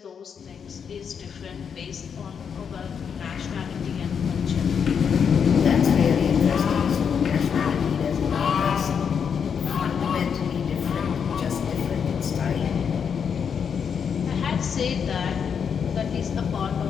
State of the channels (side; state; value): right; quieter; 7.0 dB